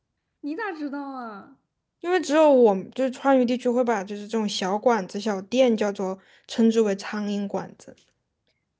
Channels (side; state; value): both; identical; correlation 1.00